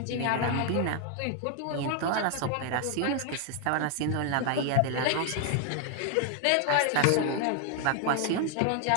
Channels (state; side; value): different; both; correlation 0.00